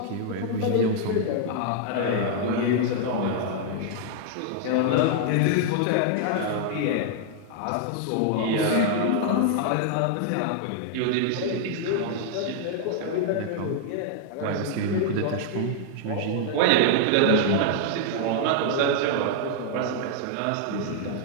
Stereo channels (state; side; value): different; both; correlation -0.01